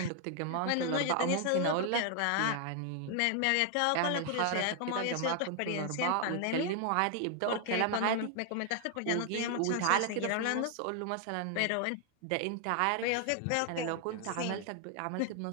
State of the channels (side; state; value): both; different; correlation 0.00